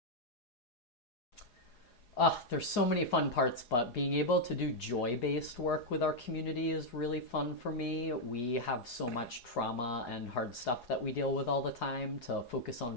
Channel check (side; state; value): right; late; 4.8 ms